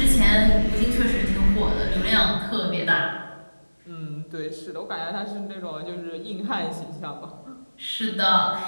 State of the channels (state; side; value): inverted; both; correlation -1.00